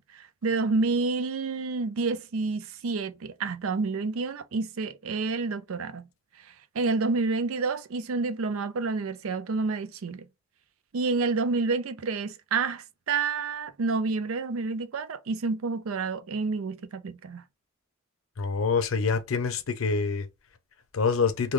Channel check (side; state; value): both; normal; correlation 0.17